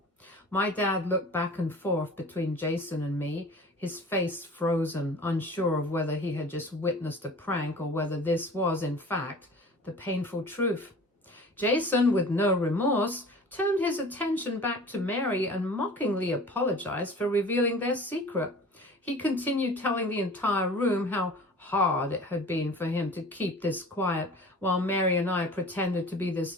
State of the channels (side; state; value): both; normal; correlation 0.42